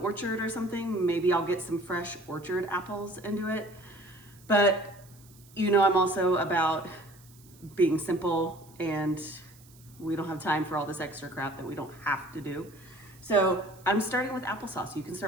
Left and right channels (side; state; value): right; noise; hiss, 25 dB below the sound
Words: or something, maybe I'll get some fresh orchard apples and do it. But you know, I'm also about being simple, and we don't have time for all this extra crap that we don't have to do. So I'm starting with applesauce. You can